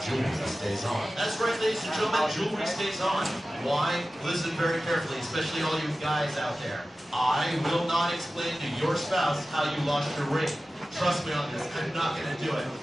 jewelry stays on. That's right, ladies and gentlemen, jewelry stays on. Why? Listen very carefully, especially all you guys out there. I will not explain to your spouse how you lost your ring. Trust me on this, I'm not going to do it.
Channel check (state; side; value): normal; both; correlation 0.95